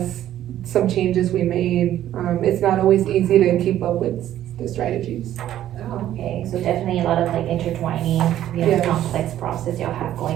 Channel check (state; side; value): quieter; left; 12.2 dB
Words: some changes we made. It's not always easy to keep up with the strategies. Oh, okay, so definitely a lot of like intertwining, Yes. complex process y'all have